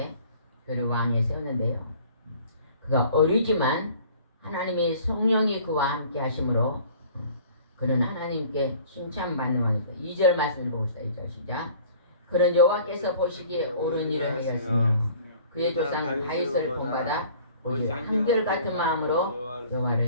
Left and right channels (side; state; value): both; inverted; correlation -0.50